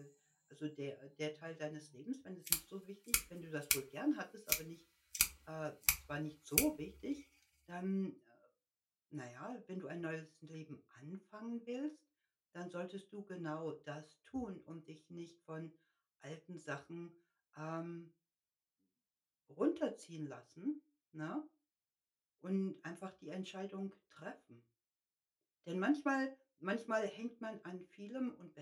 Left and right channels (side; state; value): both; identical; correlation 1.00